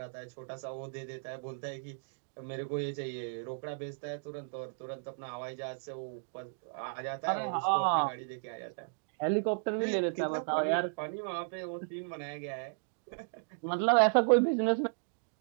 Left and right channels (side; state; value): left; silent; digital silence